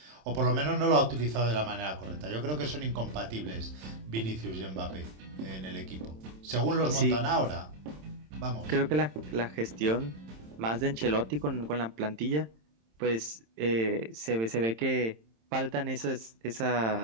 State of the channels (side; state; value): left; late; 27 ms